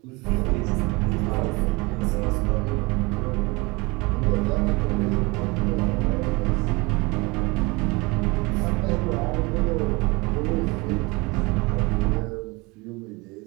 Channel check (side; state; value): left; quieter; 25.6 dB